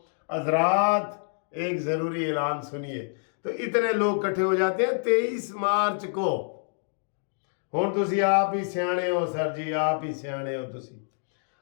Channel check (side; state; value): right; silent; digital silence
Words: حضرات ایک ضروری اعلان سنیے، تو اتنے لوگ کٹھے ہو جاتے ہیں 23 مارچ کو۔ ہوں تسی آپ ہی سیانے ہو سر جی، آپ ہی سیانے ہو تسی۔